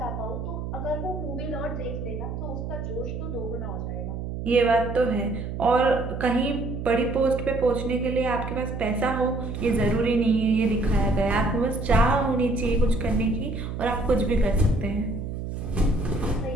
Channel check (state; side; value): noise; right; hum, 6 dB below the sound